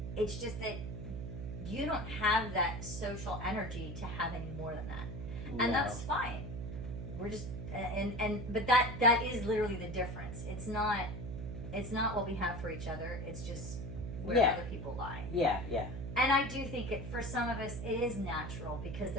It's just that you don't have that social energy to have any more than that. And No. that's fine. We're just but that is literally the difference. It's not what we have for each other. It's just where Yeah. other people lie. Yeah. Yeah. And I do think for some of us it is natural because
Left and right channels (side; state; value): right; noise; hum, 7 dB below the sound